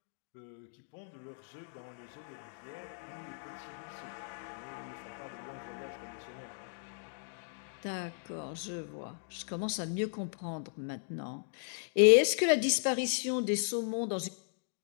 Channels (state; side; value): silent; right; digital silence